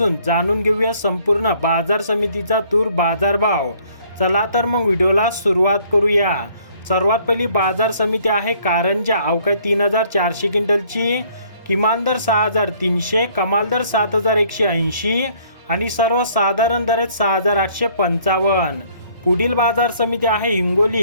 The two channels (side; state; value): both; inverted; correlation -0.61